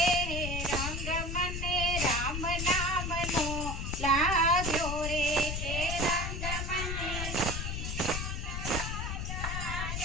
रंग मने राम नाम नो लाग्यो रे के रंग मने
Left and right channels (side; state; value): left; noise; rumble, 3 dB below the sound